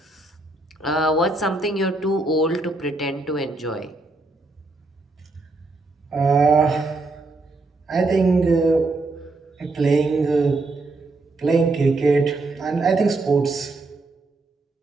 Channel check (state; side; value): quieter; left; 3.2 dB